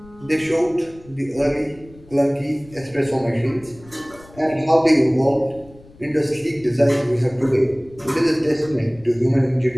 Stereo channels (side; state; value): left; noise; rumble, 23 dB below the sound